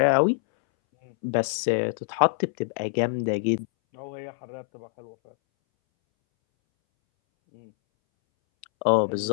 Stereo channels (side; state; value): right; silent; 61 dB below the other